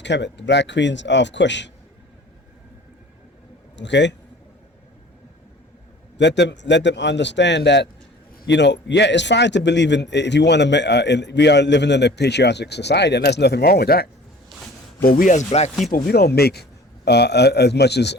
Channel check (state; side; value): normal; both; correlation 0.46